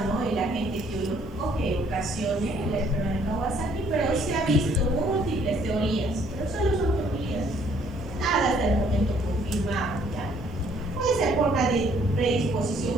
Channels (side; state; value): both; normal; correlation 0.63